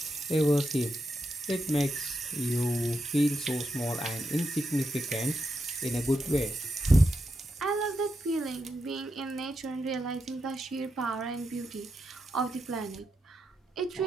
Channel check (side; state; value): both; normal; correlation 0.85